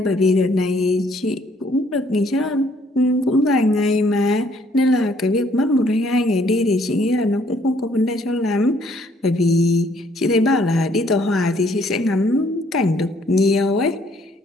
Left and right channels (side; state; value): both; normal; correlation 0.65